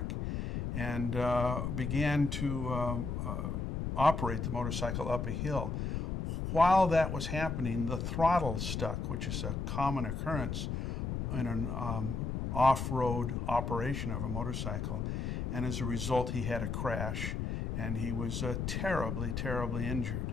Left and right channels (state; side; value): noise; left; rumble, 2 dB below the sound